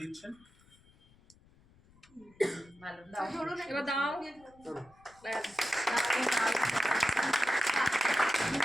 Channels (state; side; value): noise; left; rumble, 28 dB below the sound